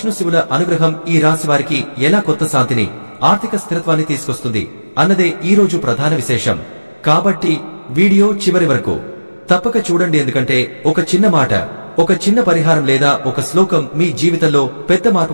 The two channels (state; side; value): inverted; both; correlation -1.00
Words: శివుల అనుగ్రహం ఈ రాశి వారికి ఎలా కొత్త శాంతిని, ఆర్థిక స్థిరత్వాన్ని తీసుకొస్తుంది అన్నదే ఈ రోజు ప్రధాన విశేషం. కాబట్టి వీడియో చివరి వరకు తప్పక చూడండి. ఎందుకంటే ఒక చిన్న మాట, ఒక చిన్న పరిహారం లేదా ఒక శ్లోకం మీ జీవితంలో పెద్ద